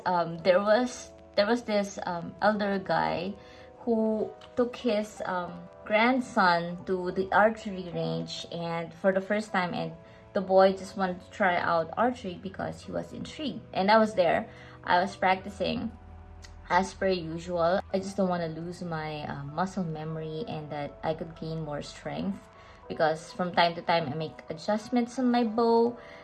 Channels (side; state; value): both; identical; correlation 1.00